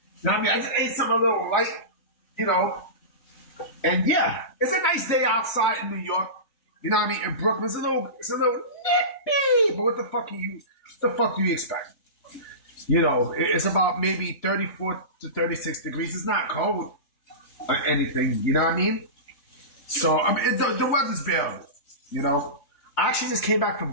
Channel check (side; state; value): right; late; 3.2 ms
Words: You know what I mean? I just ate something a little light, you know. And yeah, it's a nice day outside in New York. You know what I mean? In Brooklyn, it's a little nippy. But what the fuck do you expect? You know, it's about maybe 34 to 36 degrees. It's not cold or anything. You know what I mean? So I mean, the weather's bearable. You know, I actually just came back from